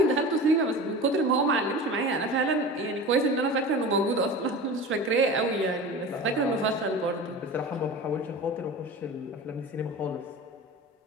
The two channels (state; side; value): normal; both; correlation 0.33